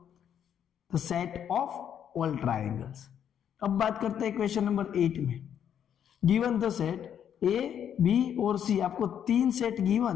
the set of all triangles. अब बात करते हैं क्वेश्चन नंबर 8 में। Given the set A, B और सी, आपको 3 सेट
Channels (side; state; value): right; quieter; 9.1 dB